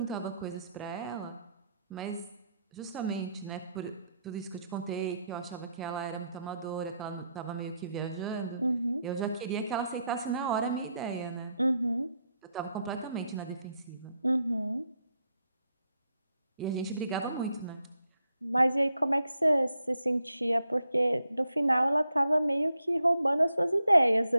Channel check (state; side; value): inverted; both; correlation -0.80